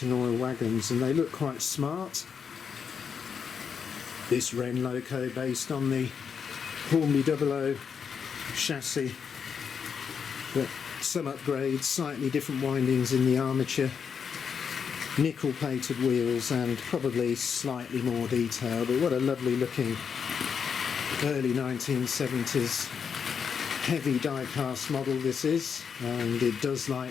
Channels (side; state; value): right; quieter; 6.7 dB